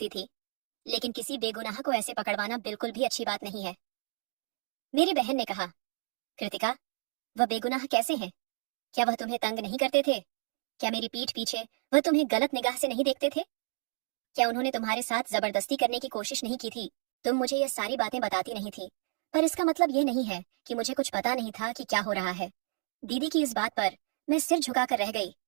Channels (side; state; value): left; silent; 57 dB below the other